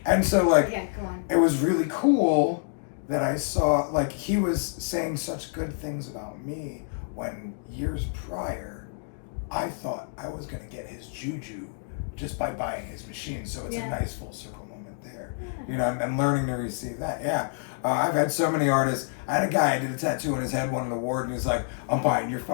And so like, Yeah, go on. it was really cool that I saw, like, he was saying such good things about me when years prior, I thought I was going to get his juju just by buying his machine. So it's a nice full circle moment there. You know, and learning to receive that. Yeah. I've had so many artists. I had a guy, I did a tattoo on his head, won an award, and he's like, I'm buying your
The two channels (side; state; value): right; silent; digital silence